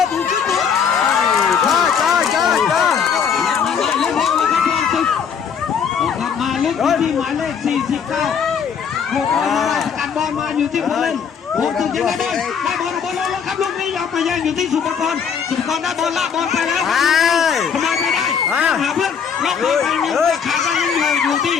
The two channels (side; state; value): right; quieter; 6.9 dB